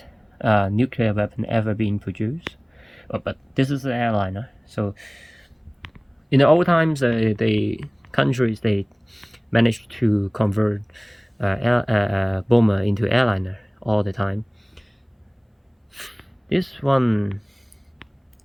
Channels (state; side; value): identical; both; correlation 1.00